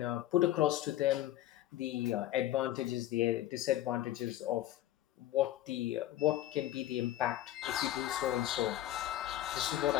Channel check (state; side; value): quieter; right; 13.8 dB